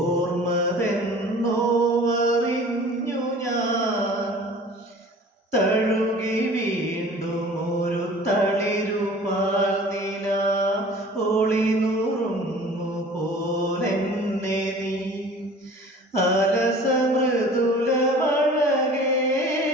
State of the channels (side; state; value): both; normal; correlation 0.45